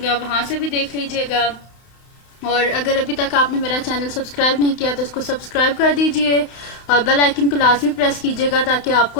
आप वहां से भी देख लीजिएगा। और अगर अभी तक आपने मेरा चैनल सब्सक्राइब नहीं किया तो इसको सब्सक्राइब कर दीजिए और बेल आइकन को लाजमी प्रेस कीजिएगा ताकि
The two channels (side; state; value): right; late; 31 ms